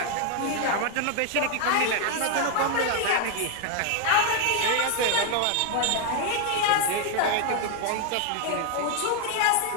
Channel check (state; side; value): different; both; correlation 0.00